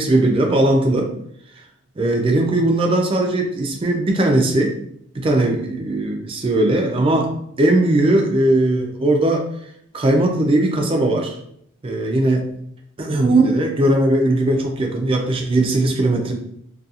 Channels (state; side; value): normal; both; correlation 0.71